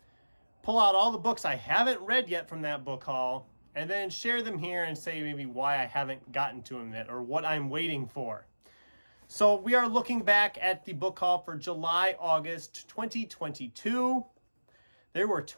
pull out all the books I haven't read yet from that book haul, and then share them here and say maybe why I haven't gotten to them yet or what I'm waiting for. So we are looking back at the book haul for July-August 2022. There were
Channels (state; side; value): inverted; both; correlation -1.00